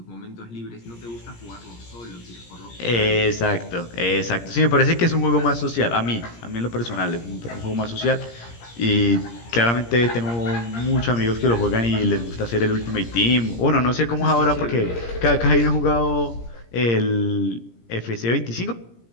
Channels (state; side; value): late; right; 17 ms